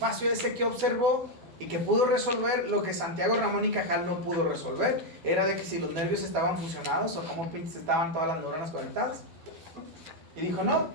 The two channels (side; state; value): left; late; 12 ms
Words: ese que observó y que pudo resolver lo que Santiago Ramón y Cajal no pudo resolver. Era de que si los nervios estaban fusionados o cómo pinches estaban todas las neuronas conectadas. Y dijo, no,